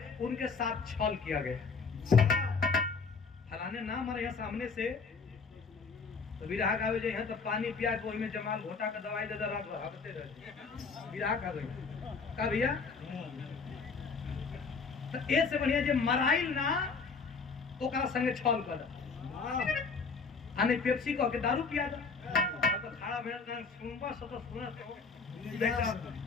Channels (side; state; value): right; quieter; 4.8 dB